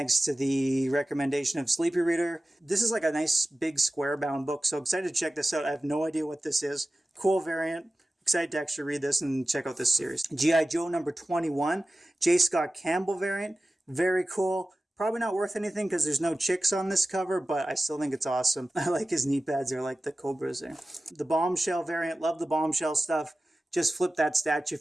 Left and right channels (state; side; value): normal; both; correlation 0.95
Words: to the recommendation of Sleepy Reader. This is like a nice big square-bound book, so excited to check this out. I have no idea what this is. Cool variant. Excited to actually read this and check out this series. G.I. Joe number 21, J. Scott Campbell variant. Very cool. Probably not worth anything because there's no chicks on this cover, but I still think it's awesome. I like his knee pads. They're like the Cobras there. The Bombshell variant. Love the Bombshell stuff. Just flipped that statue